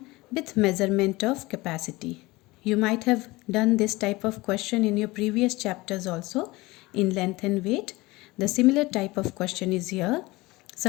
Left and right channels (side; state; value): right; quieter; 21.2 dB